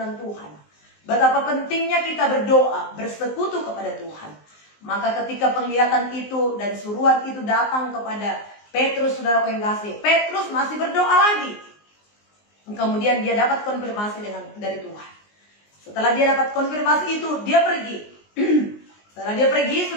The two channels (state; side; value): late; right; 19 ms